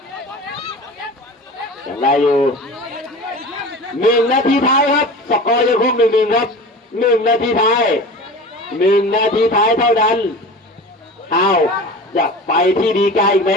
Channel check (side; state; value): both; normal; correlation 0.35